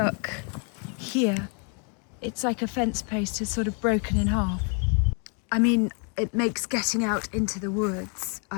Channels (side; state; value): right; quieter; 39.1 dB